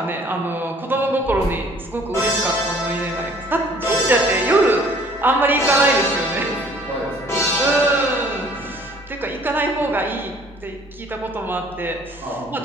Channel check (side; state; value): both; normal; correlation 0.55